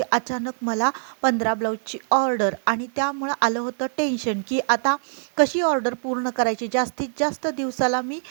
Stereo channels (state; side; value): silent; left; digital silence